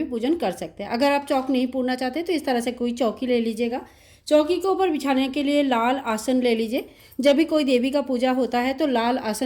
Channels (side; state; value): both; identical; correlation 1.00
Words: पूजन कर सकते हैं। अगर आप चौक नहीं पूरना चाहते तो इस तरह से कोई चौकी ले लीजिएगा। चौकी के ऊपर बिछाने के लिए लाल आसन ले लीजिए। जब भी कोई देवी का पूजा होता है तो लाल